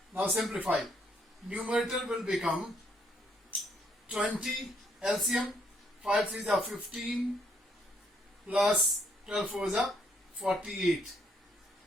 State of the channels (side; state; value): both; normal; correlation 0.70